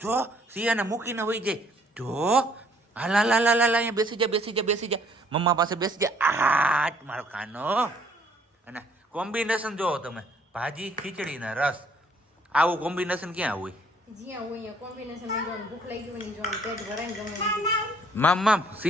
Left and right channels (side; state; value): both; normal; correlation 0.62